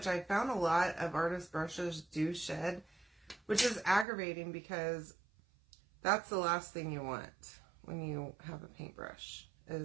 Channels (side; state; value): left; drops out; at 4.0 s